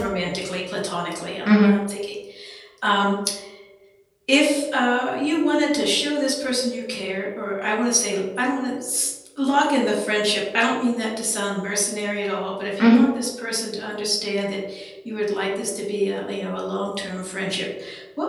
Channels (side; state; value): both; identical; correlation 1.00